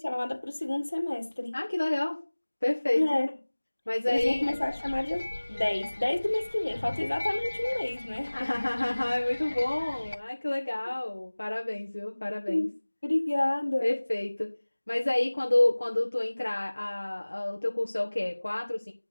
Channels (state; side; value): inverted; both; correlation -1.00